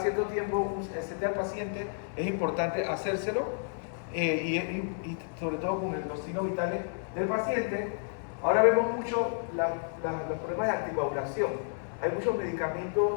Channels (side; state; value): right; silent; 57 dB below the other